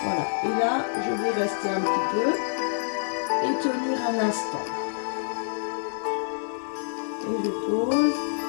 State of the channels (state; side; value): silent; right; digital silence